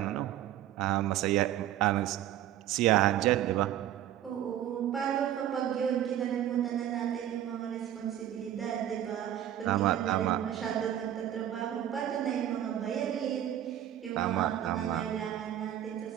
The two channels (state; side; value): quieter; left; 11.6 dB